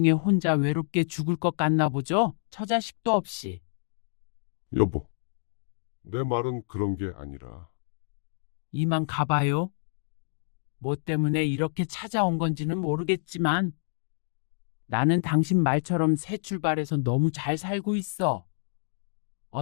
혼자 외롭게 죽을 것 같나 보죠? 처자식도 없이. 여보, 내 말은 그런 게 아니라 이만 가봐요. 뭐 때문에 이렇게 찾아온 건지는 모르겠지만 나는 당신 말처럼 새 출발해서 너무 잘 살고 있어.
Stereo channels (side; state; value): right; silent; digital silence